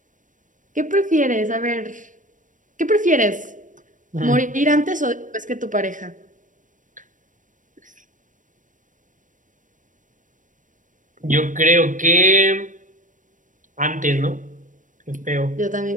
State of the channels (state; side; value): late; left; 0.37 ms